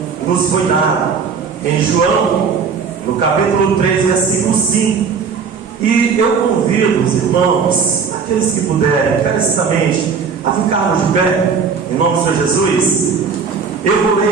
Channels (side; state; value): left; quieter; 5.8 dB